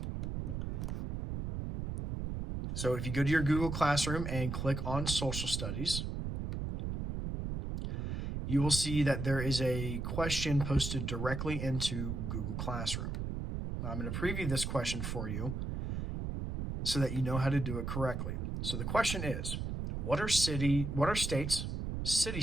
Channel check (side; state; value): right; noise; rumble, 3 dB below the sound